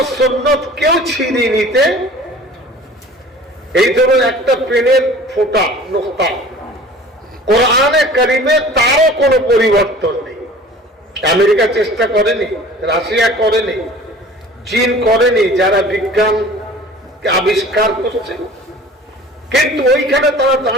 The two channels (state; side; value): normal; both; correlation 0.45